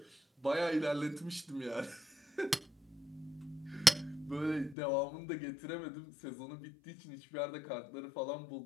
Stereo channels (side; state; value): right; drops out; at 4.8 s